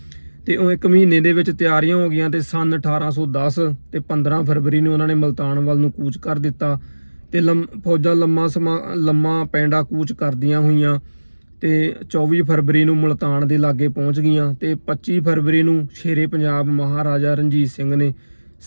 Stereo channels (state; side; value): inverted; both; correlation -1.00